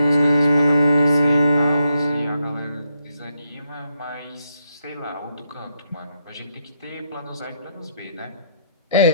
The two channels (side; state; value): both; inverted; correlation -0.78